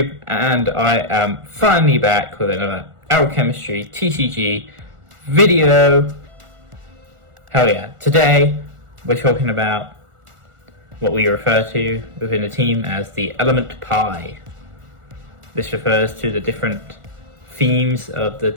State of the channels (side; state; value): left; late; 1.4 ms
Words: and I am finally back with another Alchemistry TCG video. Hell yeah. Today we're talking about what we refer to within the team as the element pi. This refers to the different themes of the